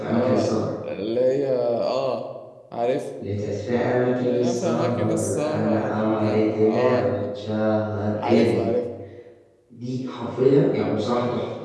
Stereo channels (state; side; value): identical; both; correlation 1.00